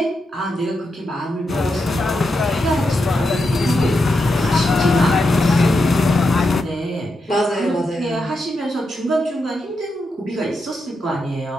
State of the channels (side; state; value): both; normal; correlation 0.85